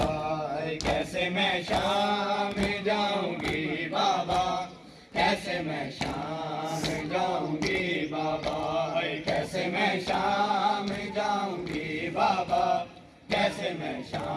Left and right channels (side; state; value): both; identical; correlation 1.00